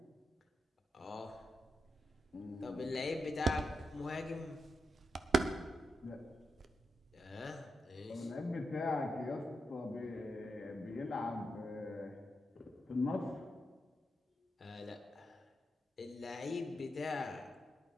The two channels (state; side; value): normal; both; correlation 0.86